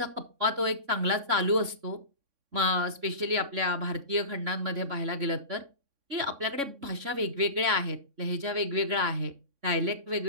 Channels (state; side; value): late; left; 3.6 ms